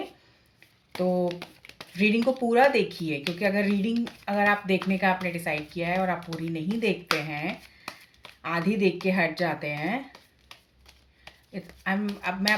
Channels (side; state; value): both; identical; correlation 1.00